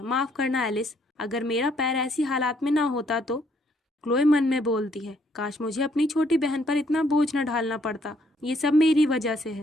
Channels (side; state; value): both; normal; correlation 0.68